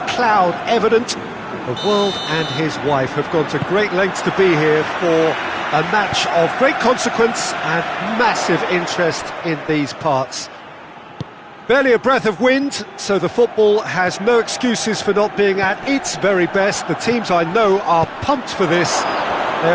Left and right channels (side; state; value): both; identical; correlation 1.00